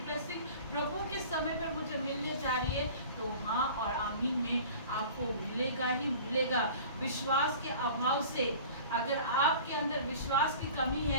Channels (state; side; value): inverted; both; correlation -0.43